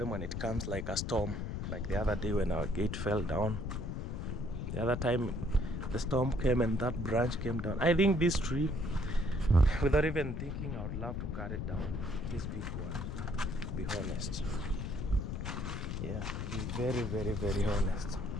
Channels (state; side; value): noise; left; rumble, 3 dB below the sound